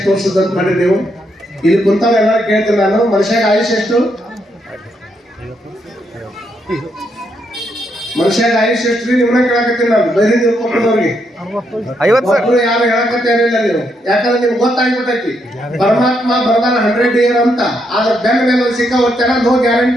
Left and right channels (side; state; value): both; normal; correlation 0.78